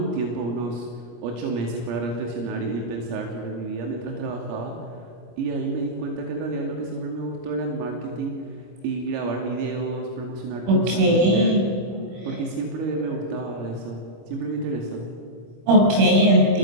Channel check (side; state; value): left; late; 25 ms